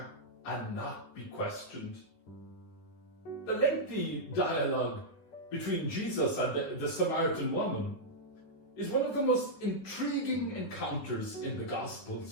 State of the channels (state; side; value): late; right; 10 ms